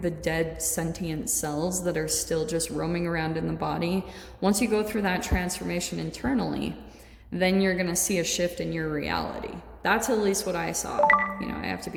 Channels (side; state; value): both; identical; correlation 1.00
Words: the dead sentient cells that are still just roaming around in the body. Once you go through that transformation internally, then you're going to see a shift in your reality. That's at least what I saw. You know, I have to